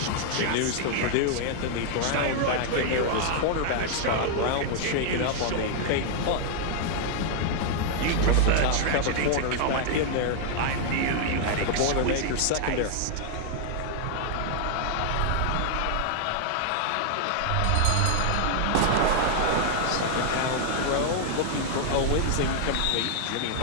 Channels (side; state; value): both; different; correlation -0.01